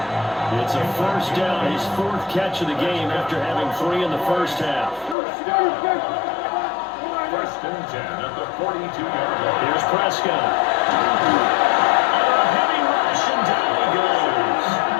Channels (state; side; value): drops out; right; at 5.2 s